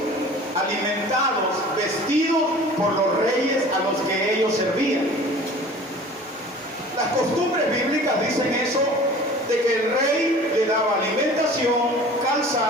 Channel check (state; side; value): normal; both; correlation 0.44